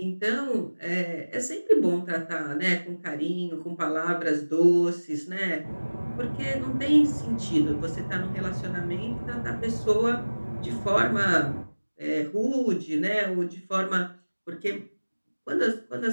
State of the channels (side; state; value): both; inverted; correlation -1.00